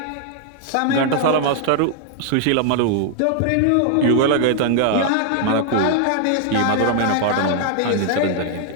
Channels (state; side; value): different; both; correlation 0.00